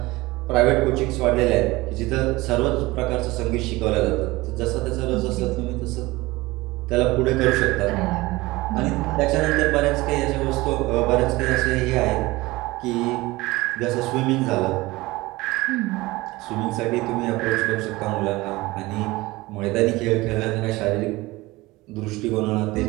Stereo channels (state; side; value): quieter; left; 20.7 dB